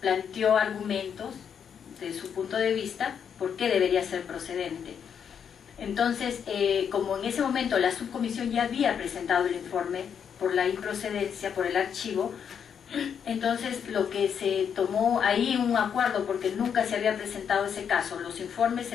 argumentos de su punto de vista por qué debería ser procedente. Entonces, como en ese momento la subcomisión ya había presentado el informe por la improcedencia, por el archivo, entonces lo que se tomó ahí un acuerdo, porque nunca se había presentado ese caso, los informes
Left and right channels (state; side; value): quieter; right; 7.7 dB